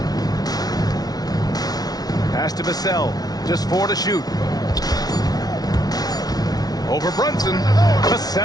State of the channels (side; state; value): right; late; 0.19 ms